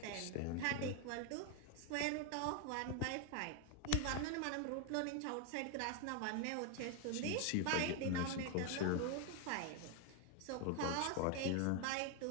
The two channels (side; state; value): both; different; correlation 0.01